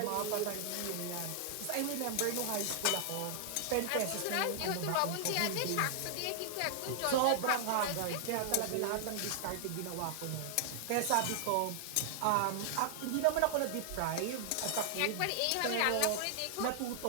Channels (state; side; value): different; both; correlation -0.01